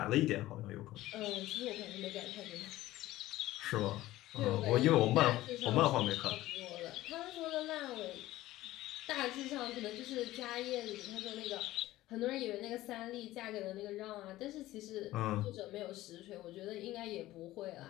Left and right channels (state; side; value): quieter; right; 16.2 dB